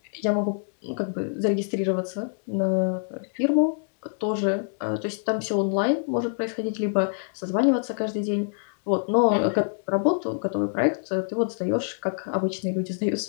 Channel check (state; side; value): silent; right; digital silence